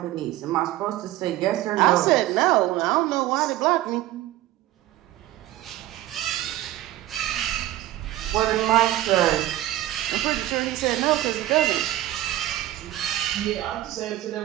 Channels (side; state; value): left; quieter; 14.8 dB